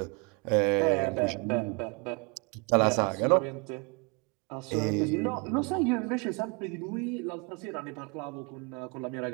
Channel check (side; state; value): left; quieter; 31.7 dB